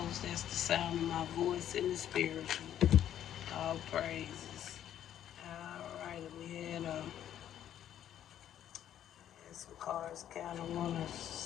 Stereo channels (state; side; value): quieter; right; 10.8 dB